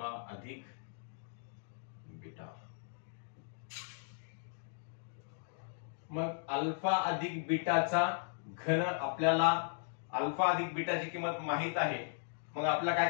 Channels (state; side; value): silent; right; digital silence